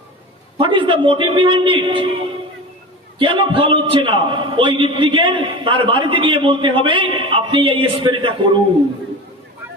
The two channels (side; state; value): both; normal; correlation 0.30